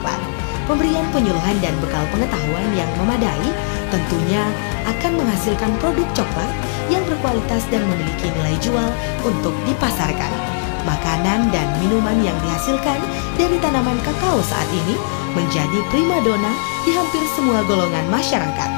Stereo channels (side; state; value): right; silent; digital silence